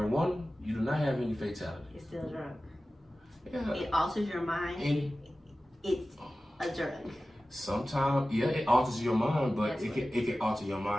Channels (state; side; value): normal; both; correlation 0.96